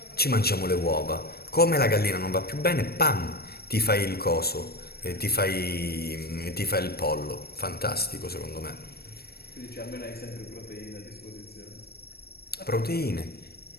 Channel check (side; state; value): right; late; 0.46 ms